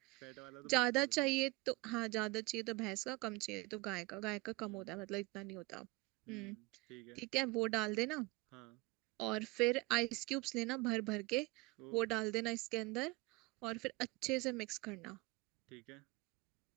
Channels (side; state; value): left; quieter; 23.6 dB